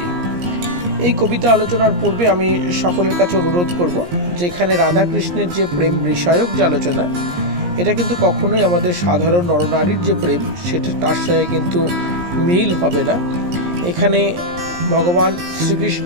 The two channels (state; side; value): late; left; 17 ms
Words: এই কবিতা আলোচনার পূর্বে আমি সকলের কাছে অনুরোধ করব, যেখানে রাধাকৃষ্ণের যে প্রেম বিষয়ক যে আলোচনা, এটা কিন্তু কখনোই আমাদের সাধারণ নরনারীর যে প্রেম সেটা তার সঙ্গে কিন্তু মিল হবে না। এখানে ভগবান শ্রীকৃষ্ণ